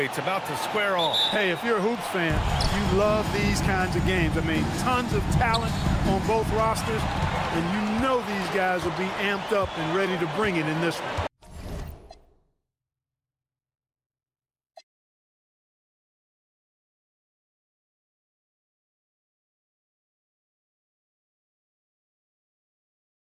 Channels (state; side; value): identical; both; correlation 1.00